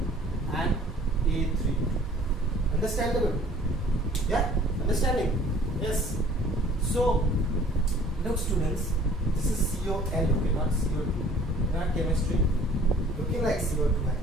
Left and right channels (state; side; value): normal; both; correlation 0.53